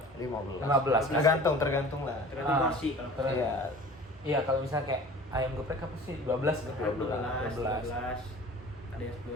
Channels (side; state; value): both; normal; correlation 0.42